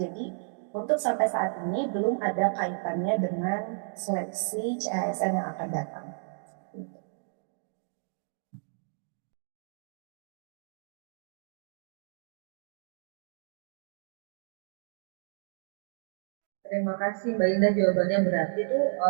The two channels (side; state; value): left; silent; digital silence